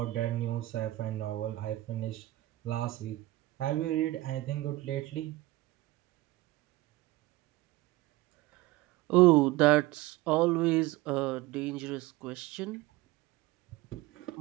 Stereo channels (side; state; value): left; quieter; 18.1 dB